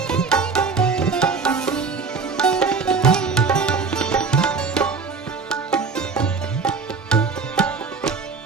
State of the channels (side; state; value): left; quieter; 4.9 dB